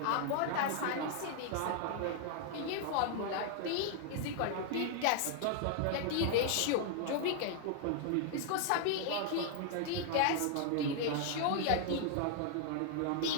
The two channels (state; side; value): different; both; correlation 0.00